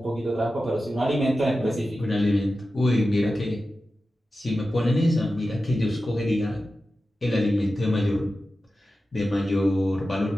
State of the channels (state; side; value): normal; both; correlation 0.93